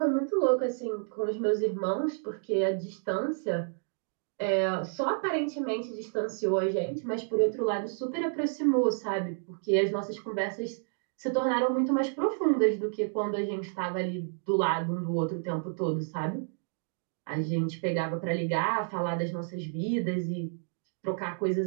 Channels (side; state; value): left; silent; 58 dB below the other